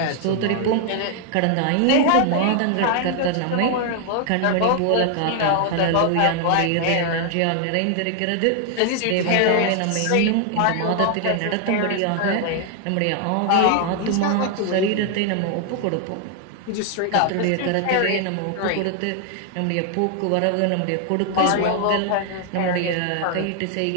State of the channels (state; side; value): different; both; correlation 0.00